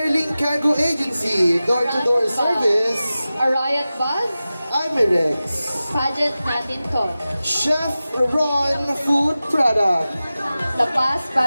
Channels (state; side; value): inverted; both; correlation -0.95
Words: Cargo Agency, door-to-door service. A Riot Buzz. Amirex. Pageant Natin To. Chef Ron Food Product. La Paz